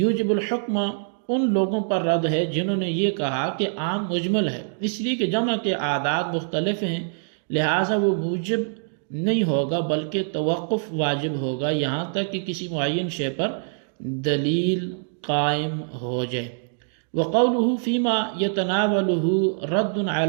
یوجب الحکم ان لوگوں پر رد ہے جنہوں نے یہ کہا کہ عام مجمل ہے، اس لیے کہ جمع کے اعداد مختلف ہیں، لہٰذا وہ موجب نہیں ہوگا بلکہ توقف واجب ہوگا یہاں تک کہ کسی معین شے پر دلیل قائم ہو جائے۔ وقوله فيما يتناوله رد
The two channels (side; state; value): left; silent; digital silence